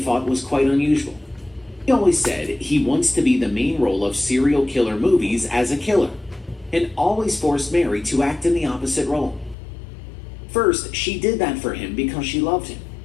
was quite unusual. He always said he wants to be the main role of serial killer movies as a killer, and always forced Mary to act in the opposite role. First, she did that for him because she loved him.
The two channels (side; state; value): right; drops out; at 9.6 s